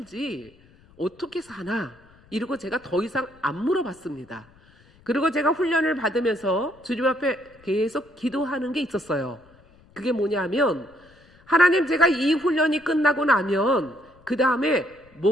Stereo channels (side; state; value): left; noise; rumble, 28 dB below the sound